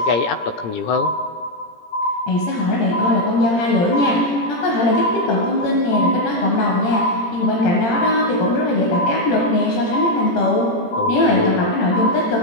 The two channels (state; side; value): late; right; 17 ms